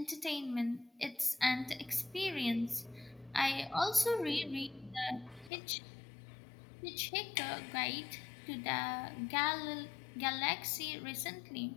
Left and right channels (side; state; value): right; drops out; at 5.5 s